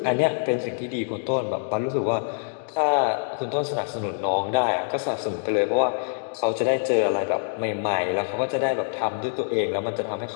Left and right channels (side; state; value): right; silent; digital silence